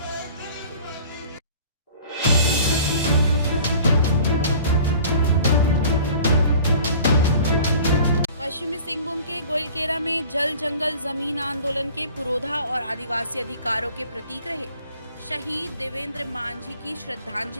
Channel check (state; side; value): inverted; both; correlation -0.47